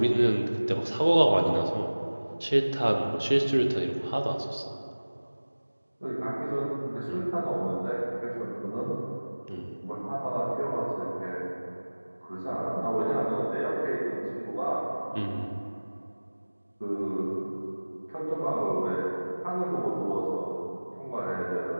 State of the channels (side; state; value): both; inverted; correlation -1.00